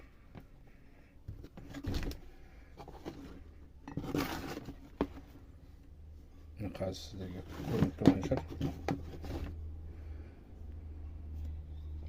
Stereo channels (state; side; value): identical; both; correlation 1.00